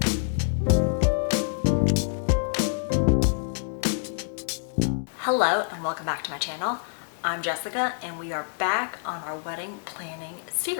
Hello and welcome back to my channel. I'm Jessica and we are back on our wedding planning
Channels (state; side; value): silent; right; digital silence